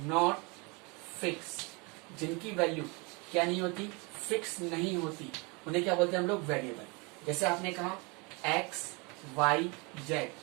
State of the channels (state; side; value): quieter; left; 28.8 dB